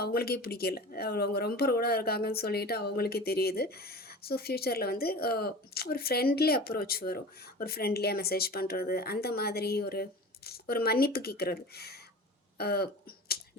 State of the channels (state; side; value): normal; both; correlation 0.36